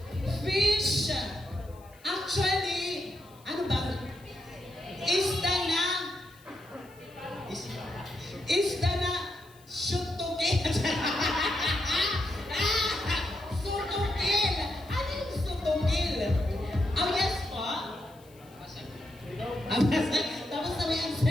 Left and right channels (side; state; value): left; noise; hiss, 27 dB below the sound